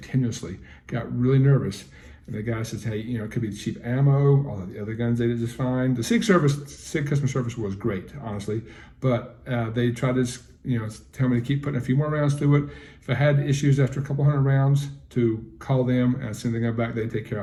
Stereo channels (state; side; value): identical; both; correlation 1.00